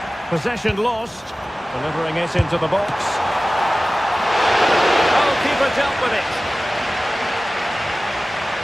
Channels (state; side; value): normal; both; correlation 0.97